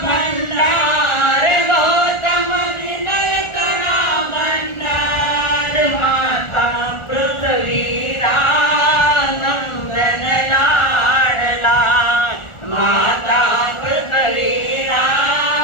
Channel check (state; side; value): late; right; 1.4 ms